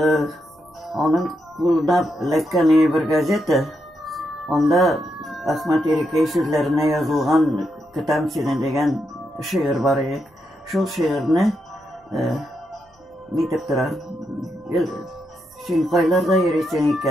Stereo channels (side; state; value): both; normal; correlation 0.82